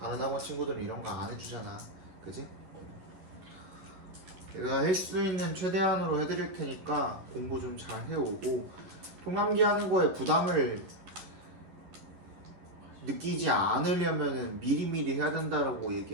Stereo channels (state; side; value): late; left; 11 ms